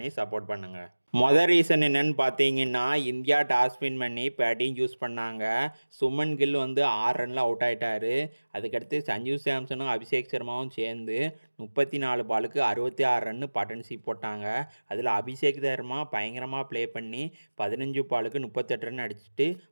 சப்போர்ட் பண்ணுங்கள். மொதல் ரீசன் என்னன்னு பார்த்தீங்கன்னா, இந்தியா டாஸ் வின் பண்ணி பேட்டிங் சூஸ் பண்ணாங்க. சுமன் கில் வந்து 6 ரனில் அவுட் ஆகிட்டாரு. அதுக்கடுத்து சஞ்சு சாம்சனும் அபிஷேக் சர்மாவும் சேர்ந்து 34 பாலுக்கு 66 ரன்னு பார்ட்னர்ஷிப் போட்டாங்க. அதில் அபிஷேக் சர்மா பயங்கரமாக ப்ளே பண்ணி 15 பாலுக்கு 38 ரன் அடிச்சுட்டு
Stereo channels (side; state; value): both; inverted; correlation -1.00